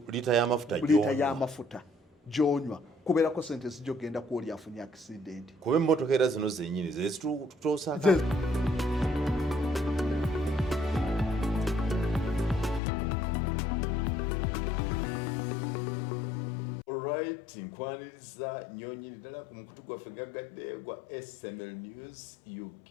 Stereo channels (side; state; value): right; drops out; at 12.8 s